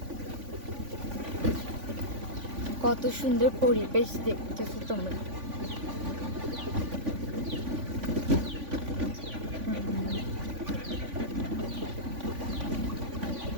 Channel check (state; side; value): late; left; 3.5 ms